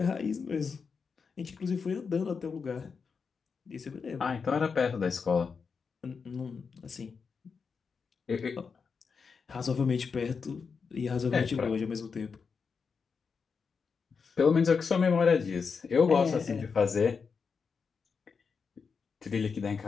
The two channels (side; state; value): right; quieter; 5.5 dB